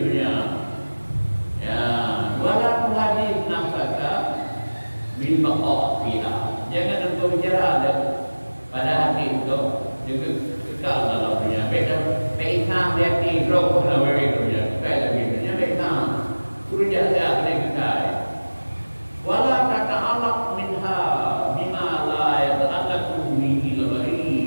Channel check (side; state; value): both; inverted; correlation -1.00